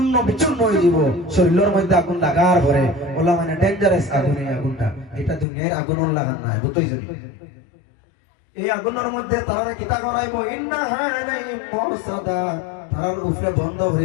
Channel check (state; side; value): drops out; right; at 5.5 s